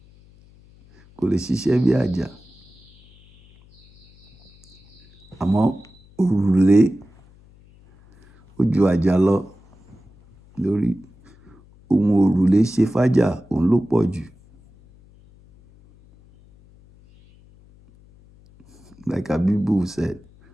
Kò lè ṣiṣẹ́ bí Ajaa. Àmọ́ òrùlé ó ju Ajaa lọ lórí. Ohun òrùlé ṣe fájá òun ló pọ̀ jù. Like Abibu said,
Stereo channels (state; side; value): noise; left; hum, 28 dB below the sound